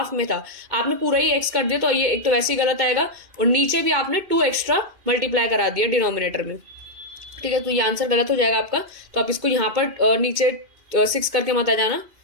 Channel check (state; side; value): late; left; 2.5 ms